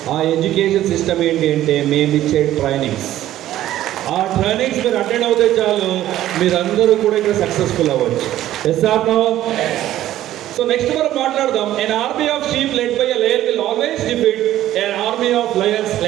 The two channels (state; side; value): quieter; left; 13.4 dB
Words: ఆ ఎడ్యుకేషన్ సిస్టమ్ ఏంటి అంటే మేము ఇచ్చే ట్రైనింగ్స్. ఆ ట్రైనింగ్స్ మీరు అటెండ్ అవుతే చాలు, మీరందరూ కూడా ఇక్కడ సక్సెస్ఫుల్ అవ్వచ్చు. SR no? సో నెక్స్ట్ మనం మాట్లాడదాం. an army of sheep led by a lion will always defeat an army of lions